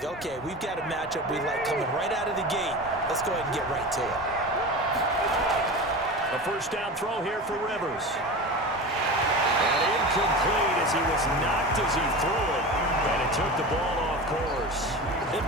okay, we've got a matchup we like coming right out of the gate. Let's go ahead and get right to it. A first down throw here for Rivers. And incomplete as he was knocked as he threw it. And it took the ball off course. They've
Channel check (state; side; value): normal; both; correlation 0.29